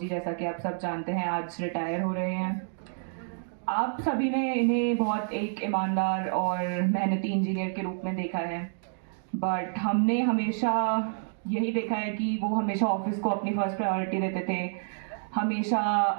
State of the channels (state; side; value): silent; left; digital silence